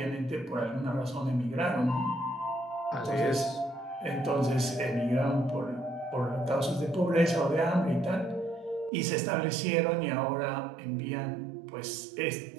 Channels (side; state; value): left; drops out; at 8.9 s